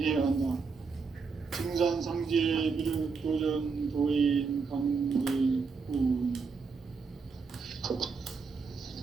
한다. 증산상제 미륵도전 도인 강대군.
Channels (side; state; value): left; quieter; 5.0 dB